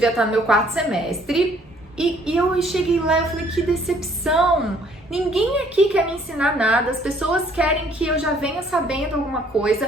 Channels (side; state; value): both; normal; correlation 0.61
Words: estar no meu 4º semestre, e eu cheguei lá e eu falei, que decepção! Ninguém aqui quer me ensinar nada, as pessoas querem que eu já venha sabendo alguma